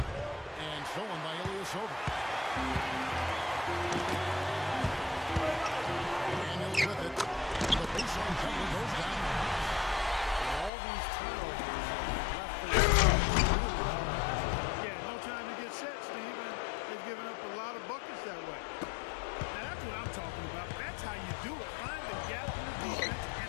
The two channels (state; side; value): drops out; right; at 10.7 s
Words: And stolen by Ilyasova. Daniels with it. The baseline jumper goes down. All these turnovers left the Yeah, no time to get set, Steve. And they've given up a lot of buckets that way. Now, that's what I'm talking about. That's how you do it. Find the gap in the defense and